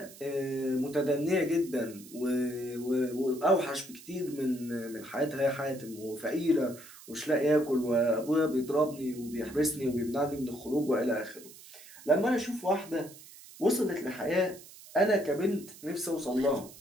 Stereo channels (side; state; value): right; noise; hiss, 19 dB below the sound